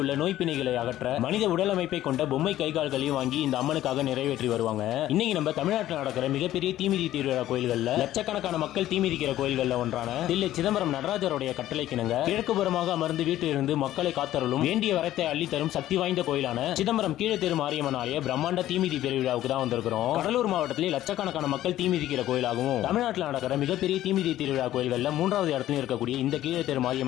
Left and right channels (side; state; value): right; quieter; 13.6 dB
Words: உள்ள நோய் பிணைகளை அகற்ற மனித உடல் அமைப்பை கொண்ட பொம்மை கைகால்களையும் வாங்கி இந்த அம்மனுக்காக நிறைவேற்றி வருவாங்க. இன்னைக்கு நம்ம தமிழ்நாட்டில் நடக்கிற மிகப்பெரிய தீமிதி திருவிழா கோயில்கள்ல லட்சக்கணக்கான மக்கள் தீமிதிக்கிற கோயில்கள்ல ஒன்றான தில்லை சிதம்பரம் நடராஜருடைய கட்டளைக்கிணங்க கிழக்கு புறமாக அமர்ந்து வீட்டிலிருந்து மக்களை காத்தருளும் வேண்டிய வரத்தை அள்ளி தரும் சக்தி வாய்ந்த கோயிலான சிதம்பரம் கீழத்தெரு மாரியம்மன் ஆலய பிரம்மாண்ட தீமிதி பெருவிழாவுக்கு தான் வந்திருக்கிறோம். கடலூர் மாவட்டத்திலே லட்சக்கணக்கான மக்கள் தீமிதிக்கிற கோயிலாகவும் தமிழ்நாட்டில் நடக்கிற மிகப்பெரிய தீமிதி திருவிழா கோயில்கள்ல 3வது இடத்துல இருக்கக்கூடிய இந்த கீழத்தெரு